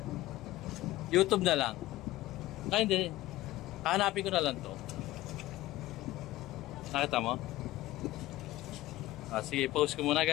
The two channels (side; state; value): right; quieter; 16.9 dB